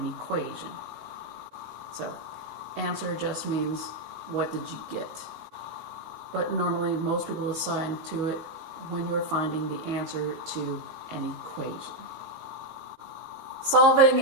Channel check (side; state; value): left; late; 18 ms